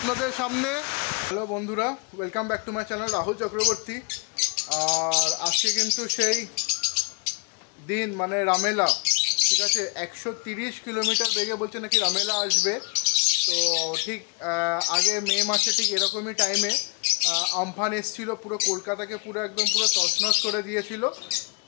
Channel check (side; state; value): right; quieter; 31.4 dB